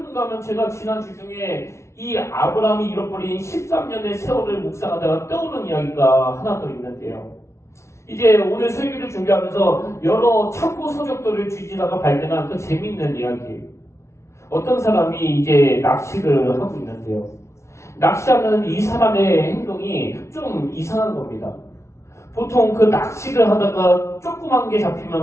하면 제가 지난 주 중에 이 아브라함이 잃어버린 13년의 세월을 묵상하다가 떠오른 이야기가 하나 더 있는데요. 이제 오늘 설교를 준비하면서 여러 참고 서적들을 뒤지다가 발견한 그 재미있는 이야기. 어떤 사람이 이제 낚시를 하고 있는데요. 낚시하는 이 사람의 행동이 좀 이상한 겁니다. 보통 그 낚시를 하다가 조그만 게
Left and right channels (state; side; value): late; right; 0.13 ms